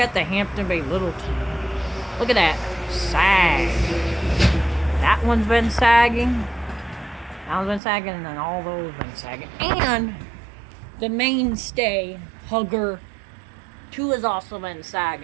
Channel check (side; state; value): left; drops out; at 7.8 s